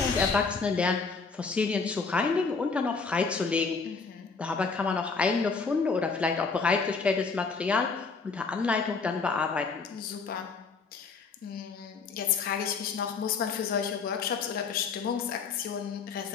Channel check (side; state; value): right; quieter; 4.8 dB